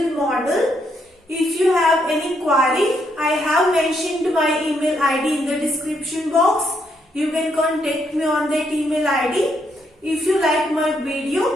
model. If you have any query, I have mentioned my email ID in the description box. You can contact me on that email ID. If you like my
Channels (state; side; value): normal; both; correlation 0.76